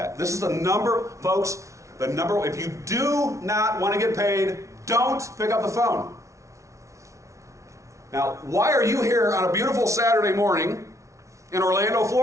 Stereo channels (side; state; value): left; late; 0.14 ms